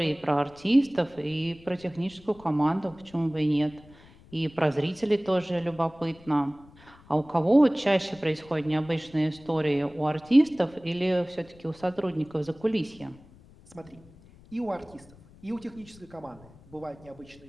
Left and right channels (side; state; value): left; noise; rumble, 24 dB below the sound